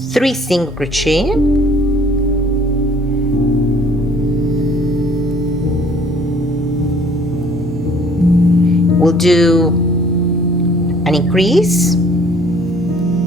3 single crochet. We'll do an increase,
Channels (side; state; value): both; normal; correlation 0.56